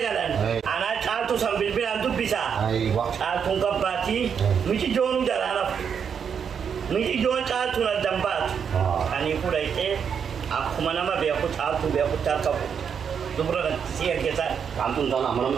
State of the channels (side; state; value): left; quieter; 7.2 dB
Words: Ana caaltu sambil bilan dubbisa. Caaltu gabbati. Miti jonu jarana. Miti jon caaltu na dambat. Ani kudayte akkuma nama beeku caaltu beeku tarkabu. Dubra siya kita. Kantun sana mana